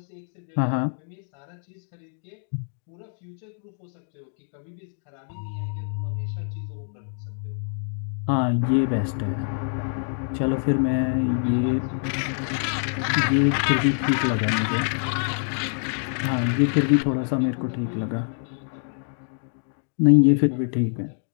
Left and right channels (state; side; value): silent; right; 61 dB below the other